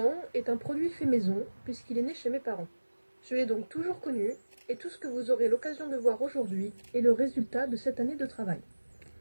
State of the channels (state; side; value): inverted; both; correlation -1.00